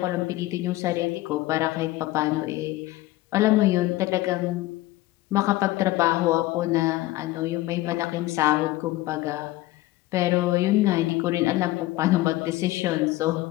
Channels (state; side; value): quieter; right; 17.5 dB